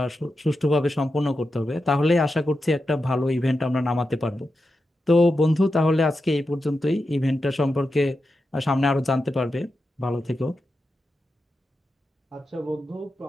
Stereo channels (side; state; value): both; normal; correlation 0.89